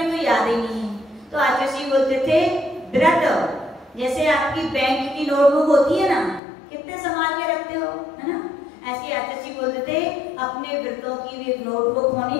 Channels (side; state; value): right; drops out; at 6.4 s